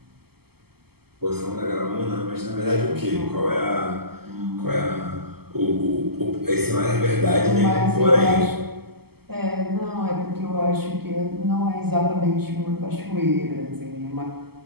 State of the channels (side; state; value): left; late; 0.96 ms